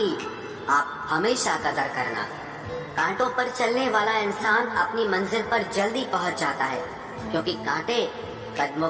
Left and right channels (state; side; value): identical; both; correlation 1.00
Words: आप हमेशा कदर करना। कांटों पर चलने वाला इंसान अपनी मंजिल पर जल्दी पहुंच जाता है क्योंकि कांटे कदमों